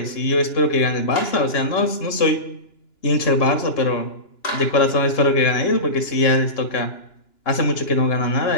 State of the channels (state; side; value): late; right; 2.9 ms